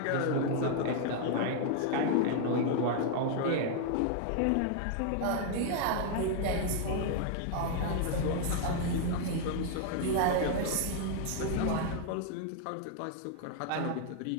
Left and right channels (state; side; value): different; both; correlation 0.00